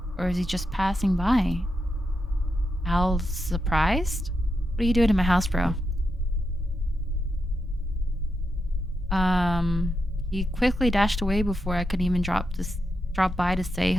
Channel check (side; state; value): both; normal; correlation 0.85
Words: Or is he just passing by? Al's surprised? What are you doing in my house, bro? He quickly dashed away before I could even drop by to say